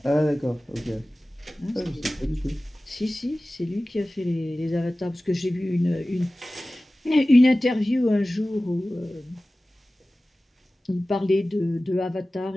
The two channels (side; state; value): both; normal; correlation 0.97